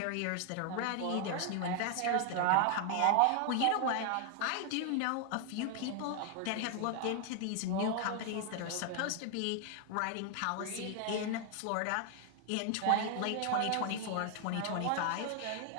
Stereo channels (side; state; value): both; different; correlation 0.00